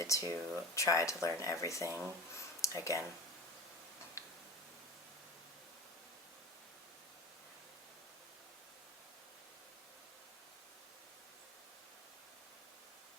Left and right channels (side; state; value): both; normal; correlation 0.31